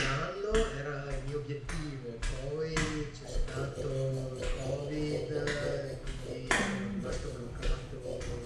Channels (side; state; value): both; identical; correlation 1.00